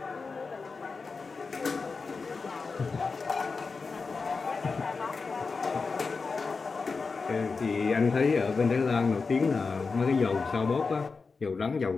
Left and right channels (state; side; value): quieter; right; 4.5 dB